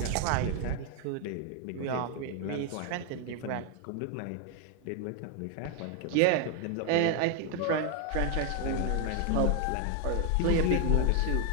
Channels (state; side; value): different; both; correlation 0.00